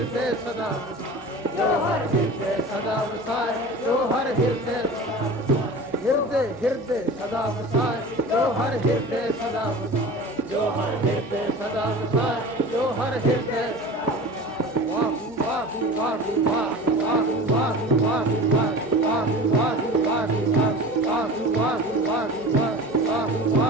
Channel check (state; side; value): normal; both; correlation 0.36